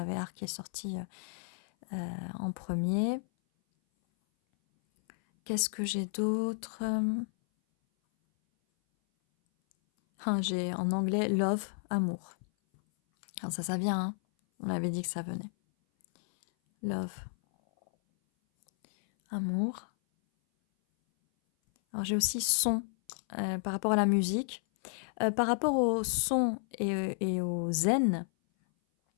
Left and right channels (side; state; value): right; silent; 57 dB below the other